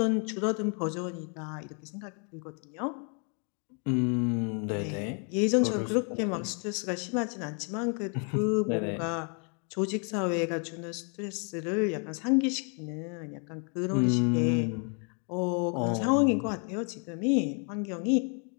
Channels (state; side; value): quieter; right; 38.8 dB